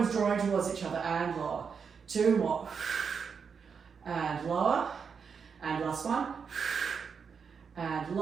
drawing towards each other and lower. Two more. And lower. And last one. And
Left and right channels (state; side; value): quieter; left; 6.2 dB